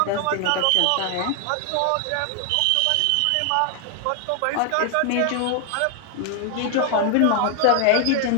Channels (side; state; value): both; different; correlation 0.00